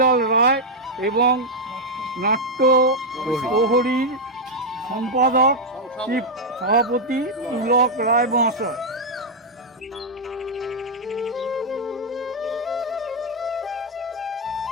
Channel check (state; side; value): normal; both; correlation -0.02